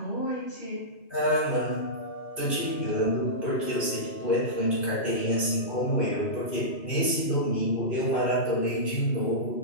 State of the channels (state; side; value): late; right; 2.5 ms